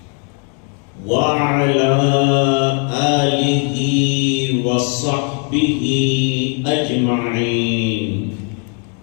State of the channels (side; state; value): right; quieter; 39.4 dB